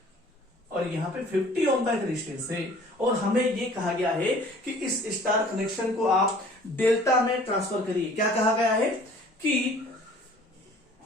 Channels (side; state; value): both; normal; correlation 0.51